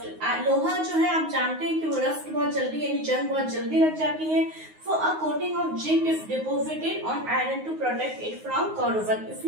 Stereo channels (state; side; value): late; left; 9.5 ms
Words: लोहा जो है आप जानते हैं कि वो रस्ट बहुत जल्दी यानी जंग बहुत जल्दी लग जाती है। So a coating of zinc is deposited on iron to protect it from corrosion,